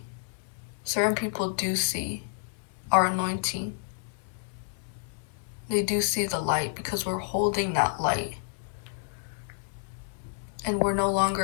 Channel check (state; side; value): silent; right; digital silence